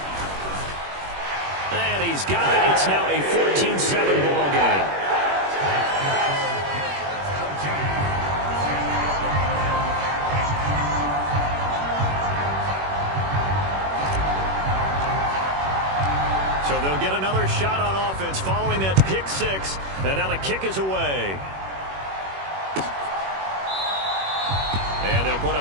And he's got it. It's now a 14-7 ball game. So they'll get another shot on offense following that pick 6. And now the kick is away. And they'll put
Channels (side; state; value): left; late; 21 ms